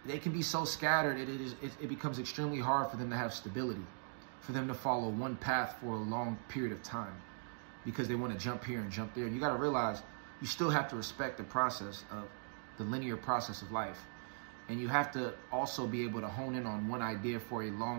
they can be so scattered, it becomes extremely hard for them to have stability, for them to follow one path for a long period of time, because they want to jump here and jump there. And you got to realize you still have to respect the process of the linear process of life. And you have to also be able to hone in on one idea for a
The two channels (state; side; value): silent; left; digital silence